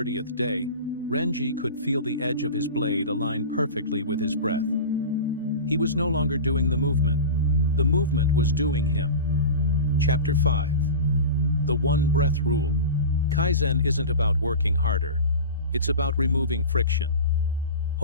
day, Renji could feel the edge of his blade align perfectly with his breath. He was no longer doing the movement was doing him. Chapter 5. The One Breath Rule. Kaizen isn't about working harder. It's about removing friction.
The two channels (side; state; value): both; inverted; correlation -0.30